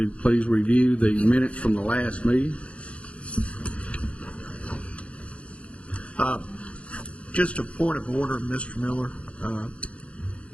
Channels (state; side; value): late; right; 0.062 ms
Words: please review the minutes from the last meeting. Just a point of order, Mr. Miller.